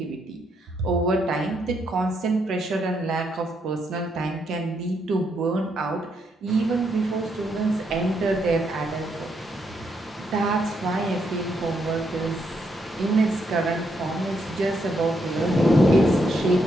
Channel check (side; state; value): both; normal; correlation 0.77